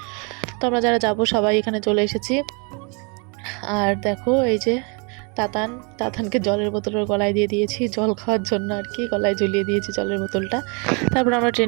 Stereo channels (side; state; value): left; quieter; 33.4 dB